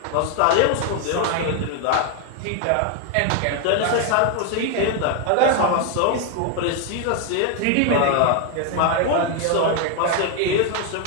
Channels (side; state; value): both; different; correlation 0.01